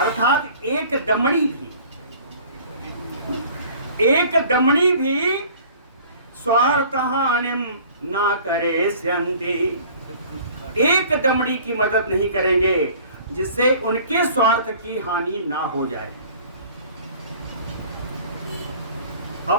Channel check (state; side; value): inverted; both; correlation -0.50